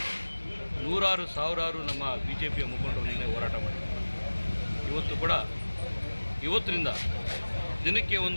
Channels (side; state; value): both; inverted; correlation -1.00